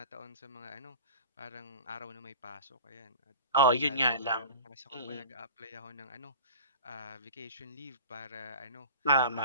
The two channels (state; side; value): inverted; both; correlation -0.39